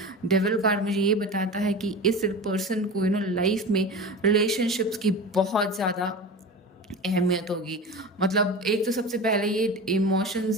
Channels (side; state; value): both; normal; correlation 0.30